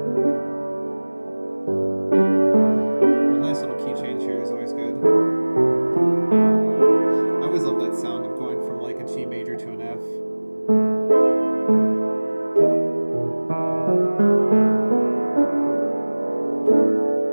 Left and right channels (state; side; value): inverted; both; correlation -1.00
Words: Sound of going from like a G major to an F.